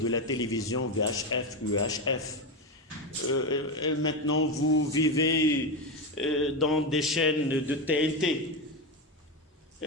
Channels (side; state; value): both; normal; correlation 0.13